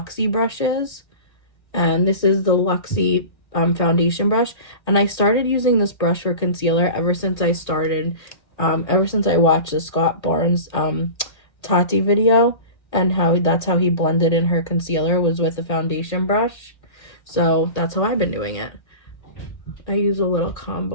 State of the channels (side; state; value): right; late; 1.8 ms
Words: brushes, and this is the Luxie foundation brush. And I started using this brush for concealer ever since I watched the Scott Barnes Tati video, and that's how he blended in her concealer, was with a foundation brush. So that's how I've been doing it. I use a little